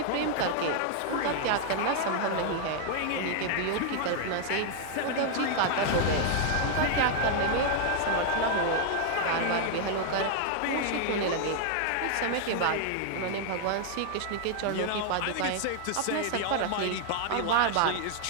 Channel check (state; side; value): different; both; correlation 0.00